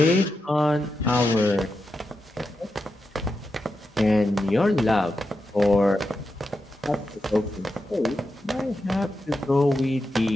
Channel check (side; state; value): both; normal; correlation 0.88